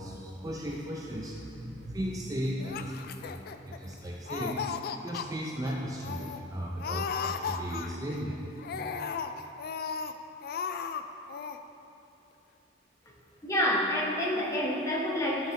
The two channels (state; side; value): normal; both; correlation 0.28